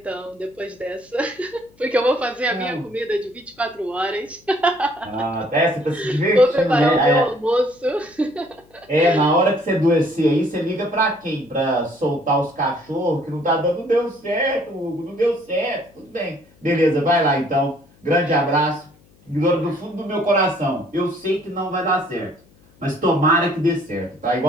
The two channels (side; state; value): left; noise; hum, 30 dB below the sound